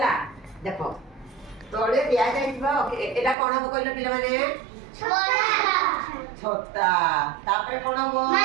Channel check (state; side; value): drops out; left; at 3.4 s